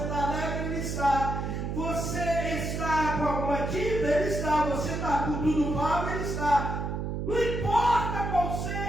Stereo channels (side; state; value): right; noise; hum, 3 dB below the sound